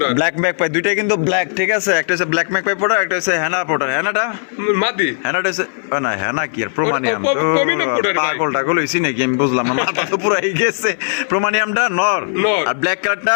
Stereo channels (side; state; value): right; silent; 57 dB below the other